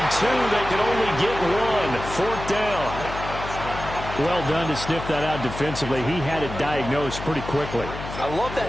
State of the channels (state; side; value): noise; left; hum, 9 dB below the sound